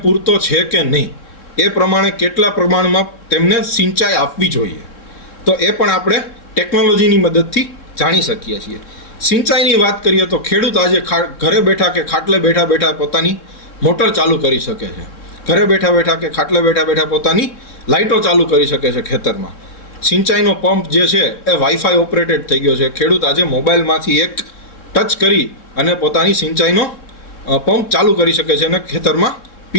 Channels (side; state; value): right; late; 3.6 ms